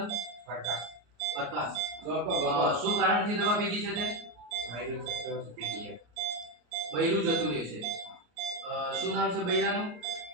પ્રકાશ. પ્રકાશ, શું કારણથી દવા પીધી છે તે? બૈરું જતું રહે છે. શું નામ છે બૈરાનું?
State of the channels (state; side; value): late; left; 33 ms